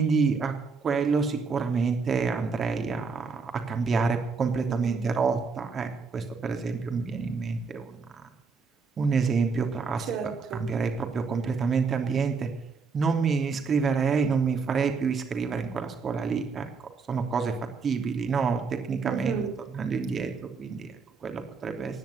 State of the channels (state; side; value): quieter; left; 5.0 dB